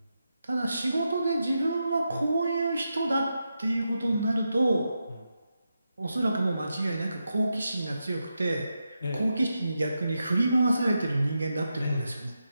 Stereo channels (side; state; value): both; inverted; correlation -0.87